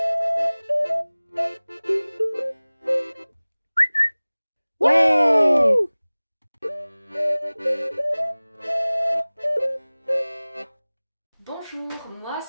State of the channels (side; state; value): both; inverted; correlation -1.00